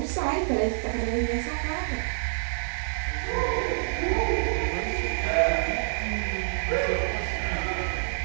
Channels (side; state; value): left; silent; digital silence